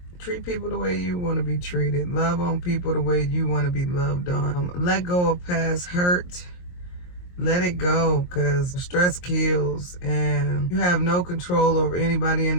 treat people the way you want to be treated. Love on people the way you want to be loved on. Let go of past hurt. Let it go, because stress kills and you have no control over anybody in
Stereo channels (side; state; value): right; late; 22 ms